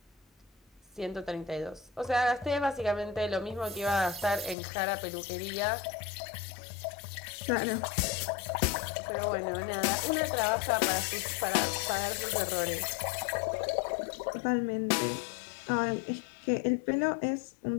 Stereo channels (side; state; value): right; drops out; at 4.5 s